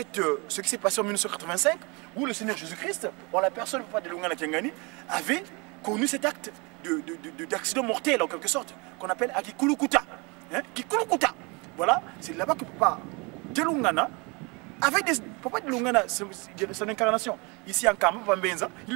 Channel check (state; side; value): quieter; left; 29.0 dB